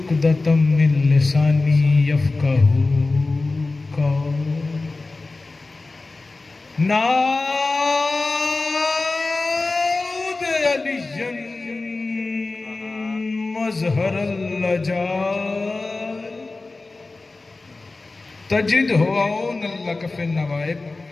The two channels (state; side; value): quieter; right; 3.4 dB